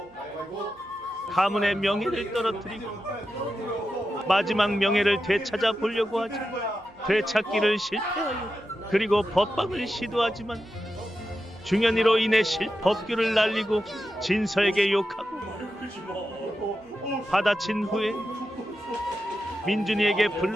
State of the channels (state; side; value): noise; right; hum, 29 dB below the sound